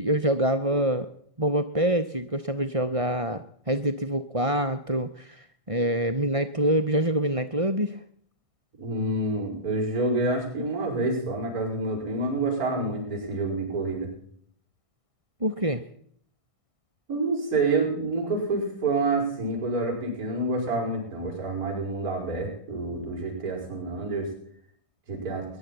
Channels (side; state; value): left; late; 1.6 ms